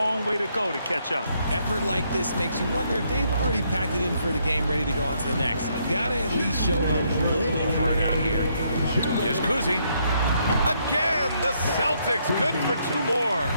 way to go to catch up. Effort like this makes you wonder if they've already packed it in for the game ready to go on to the next. You got to at least show a little heart out here. Here's Kuzi. Again, the Celtics good for 2 more.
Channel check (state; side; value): inverted; both; correlation -0.73